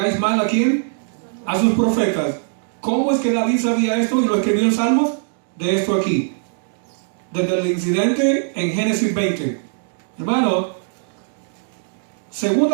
mal a quién? A sus profetas. ¿Cómo es que David sabía esto y lo escribió en Salmos? De esto aquí. Desde el incidente en Génesis 20. Hermano,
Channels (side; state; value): left; silent; digital silence